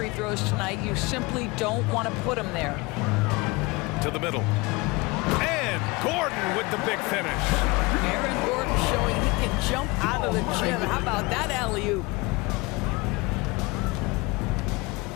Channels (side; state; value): right; quieter; 24.6 dB